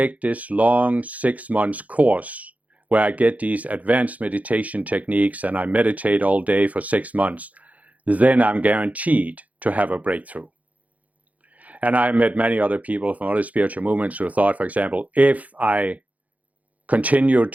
this long 6 months course where I get these advanced meditation techniques and I meditate all day for 6 months, then I'm guaranteed to have a breakthrough. And I met many other people from other spiritual movements who thought, for example, if I continue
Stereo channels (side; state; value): left; late; 0.072 ms